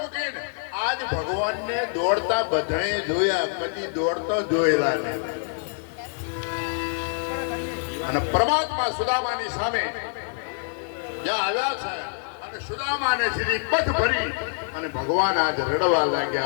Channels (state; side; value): silent; right; digital silence